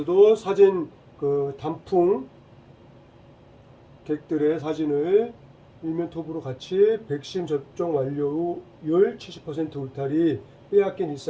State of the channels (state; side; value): identical; both; correlation 1.00